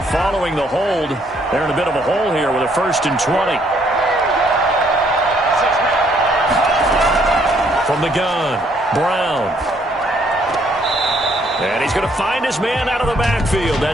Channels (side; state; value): both; normal; correlation 0.67